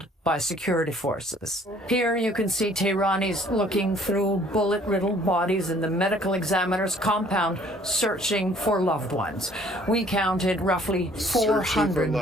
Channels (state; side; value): normal; both; correlation 0.57